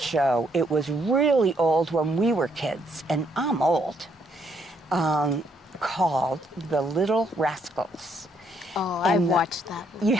It was really old when we were kids, and I'm old, called The Little Rascals. Oh, I've And watched that one. you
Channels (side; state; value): both; normal; correlation 0.71